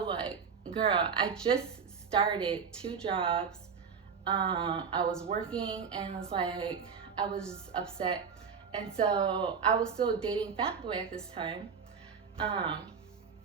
like, girl, I just started 2 jobs. I was working, and it's like, I was just upset. And so I was still dating Fat Boy at this time.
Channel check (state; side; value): quieter; left; 6.2 dB